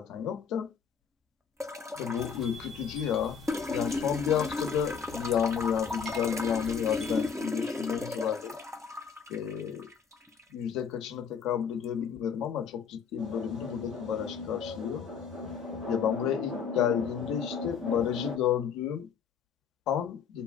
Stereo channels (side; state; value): right; quieter; 6.8 dB